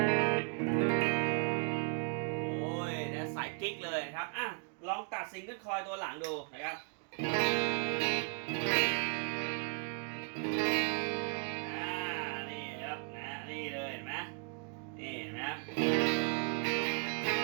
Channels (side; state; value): left; quieter; 38.6 dB